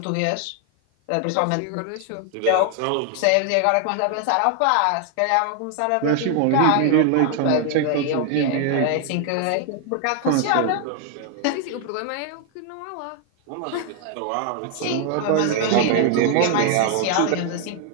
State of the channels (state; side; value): different; both; correlation 0.00